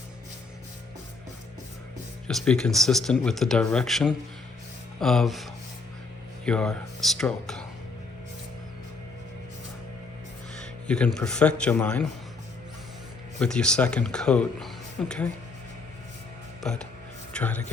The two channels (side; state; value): right; quieter; 3.9 dB